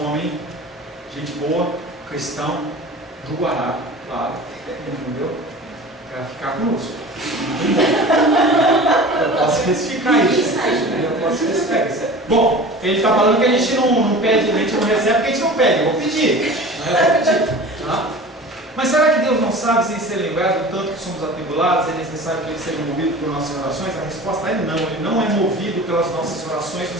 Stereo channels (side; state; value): both; normal; correlation 0.38